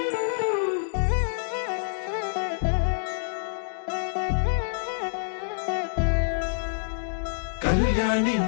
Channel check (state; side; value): silent; right; digital silence